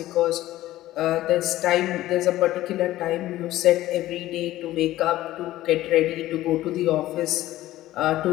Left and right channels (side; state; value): right; quieter; 15.4 dB